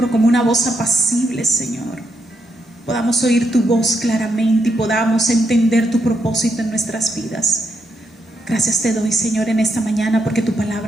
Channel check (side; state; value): both; normal; correlation 0.80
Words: como una voz apacible, Señor. Podamos oír tu voz claramente y podamos entender tu propósito en nuestras vidas. Gracias te doy, Señor, en esta mañana, porque tu